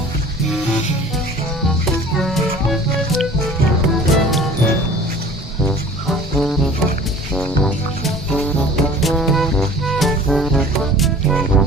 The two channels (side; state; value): both; normal; correlation 0.46